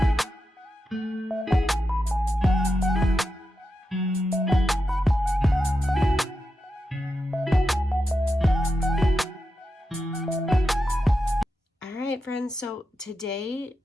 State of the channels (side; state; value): both; normal; correlation 0.88